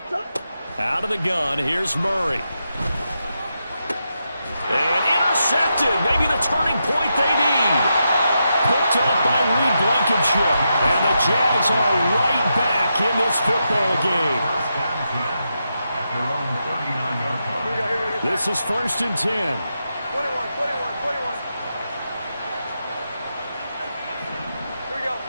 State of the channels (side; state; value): both; inverted; correlation -0.85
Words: Out of the gun, here's Murray. And intercepted. Maybe the turning point they need. Picked up by Reed Blankenship. And the Jags are right back in this football game. This is 1st and 10. 21. Here we go.